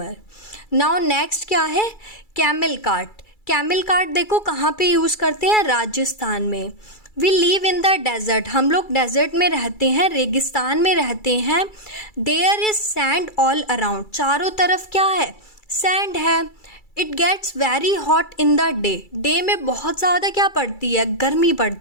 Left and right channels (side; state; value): right; late; 2.3 ms